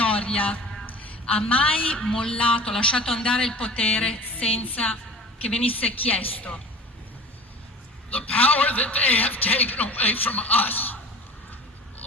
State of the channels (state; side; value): normal; both; correlation 0.39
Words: ha mai mollato, lasciato andare il potere senza che venisse chiesto. The power that they have taken away from us